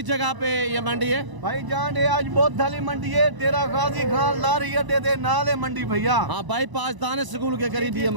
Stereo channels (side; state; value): left; late; 1.0 ms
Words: जगह पे ये मंडी है भाईजान? ये आज बहुत धाली मंडी है डेरा गाजी खान लारी अड्डे दे नाले मंडी भैया। हाँ बाईपास दाने स्कूल के करीब ये